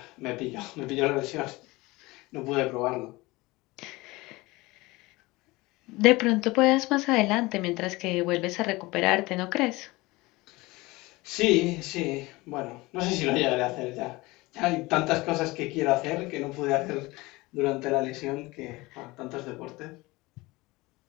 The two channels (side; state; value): right; quieter; 21.8 dB